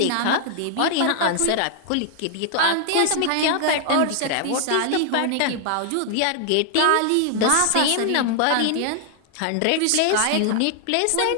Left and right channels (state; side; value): different; both; correlation 0.00